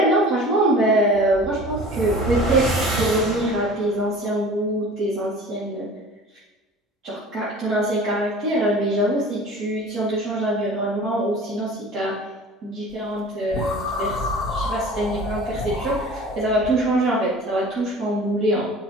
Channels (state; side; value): normal; both; correlation 0.42